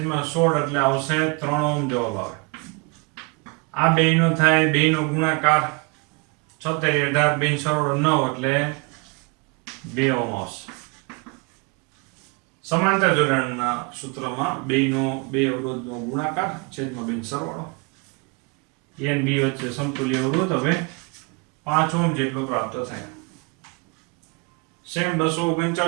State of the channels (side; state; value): left; quieter; 30.0 dB